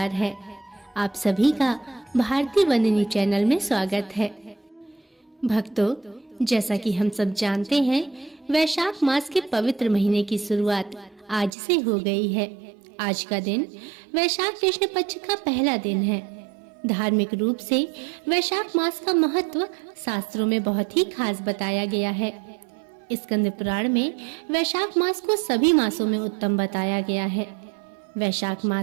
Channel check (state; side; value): drops out; left; at 11.6 s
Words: है। आप सभी का भारती वंदनी चैनल में स्वागत है। भक्तों, जैसा कि हम सब जानते हैं, वैशाख मास के पवित्र महीने की शुरुआत आज से हो गई है। आज का दिन वैशाख कृष्ण पक्ष का पहला दिन है। धार्मिक रूप से वैशाख मास का महत्व शास्त्रों में बहुत ही खास बताया गया है। स्कंद पुराण में वैशाख मास को सभी मासों में उत्तम बताया गया है। वैशाख